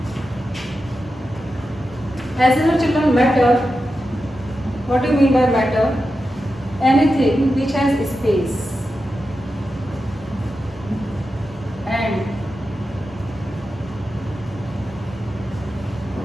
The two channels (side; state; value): both; normal; correlation 0.90